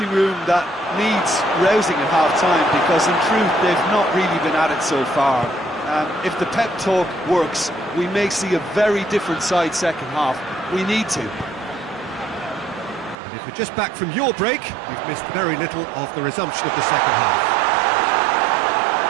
room that needs rousing at half-time, because in truth they've not really been at it so far. If the pep talk works, we may see a very different side second half. We need to. And if we're just back from your break, you've missed very little of the resumption of the second half.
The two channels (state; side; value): drops out; left; at 13.2 s